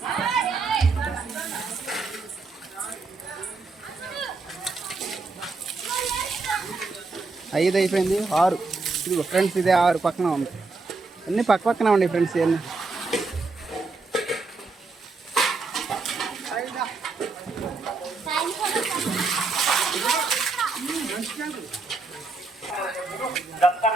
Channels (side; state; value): left; quieter; 3.9 dB